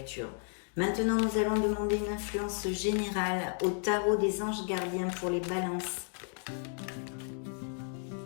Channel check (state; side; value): silent; right; 56 dB below the other